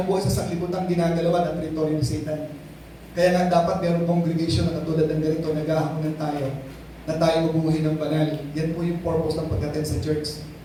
sa sanglibutan ginagalawan ang teritoryo ni Satan. Kaya nga dapat mayroong congregation na katulad ng ganito, naghahaponan tayo, na tayo mabuhay ng banal. Yan po yung purpose ng pag-attend sa church.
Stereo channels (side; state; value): both; identical; correlation 1.00